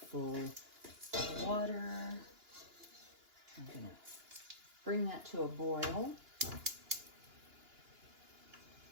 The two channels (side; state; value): left; late; 2.9 ms